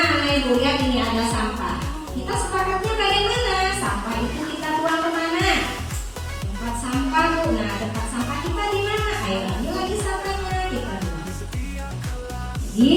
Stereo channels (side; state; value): both; identical; correlation 1.00